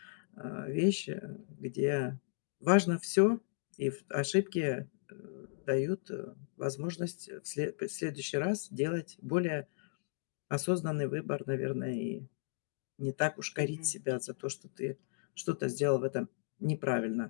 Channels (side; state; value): right; silent; digital silence